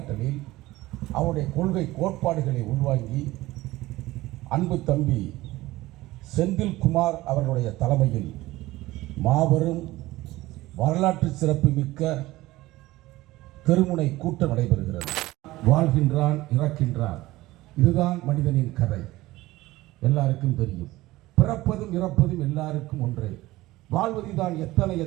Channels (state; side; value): quieter; left; 18.1 dB